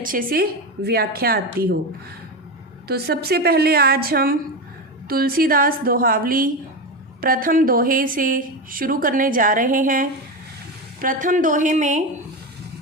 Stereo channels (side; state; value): both; normal; correlation 0.18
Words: से व्याख्या आती हो। तो सबसे पहले आज हम तुलसीदास दोहावली प्रथम दोहे से शुरू करने जा रहे हैं। प्रथम दोहे में